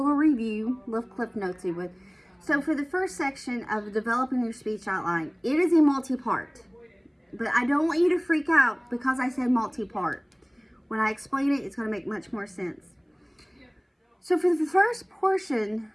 little clip notes you would. So for the first section of developing your speech outline, it is a multi-part, but I don't want you to freak out because I said multi-part. When I explain it, it's going to make much more sense. So for the first portion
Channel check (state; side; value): identical; both; correlation 1.00